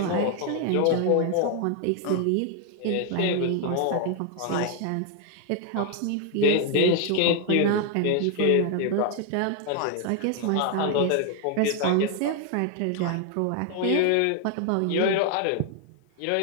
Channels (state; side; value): different; both; correlation 0.00